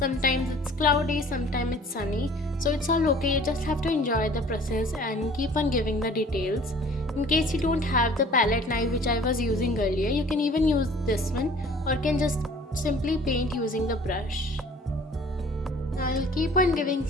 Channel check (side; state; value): both; normal; correlation 0.50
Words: it's cloudy, sometimes it's sunny. So it's all okay, you just have to enjoy the process and keep on giving the details. In case you don't have the palette knife which I was using earlier, you can even use this one or can just simply paint using the brush. I'll keep on giving